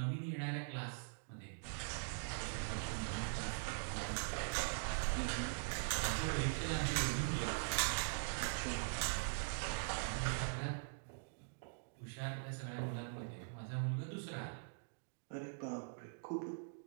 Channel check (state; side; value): silent; left; digital silence